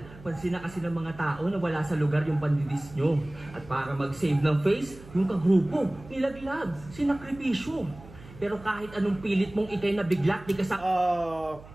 Pansin na kasi ng mga tao na wala sa lugar yung pandidis nyo. At para mag-save ng face, yung kagrupo, nilaglag, sinakripisyo. Pero kahit anong pilit mong ikay na biglat, di ka sa...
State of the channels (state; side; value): noise; right; hum, 19 dB below the sound